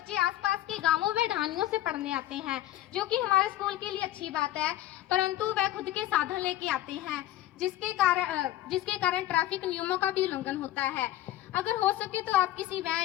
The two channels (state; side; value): quieter; right; 14.3 dB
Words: आसपास के गांवों व ढानियों से पढ़ने आते हैं, जो कि हमारे स्कूल के लिए अच्छी बात है, परंतु वह खुद के साधन लेके आते हैं, जिसके कारण ट्रैफिक नियमों का भी उल्लंघन होता है। अगर हो सके तो आप किसी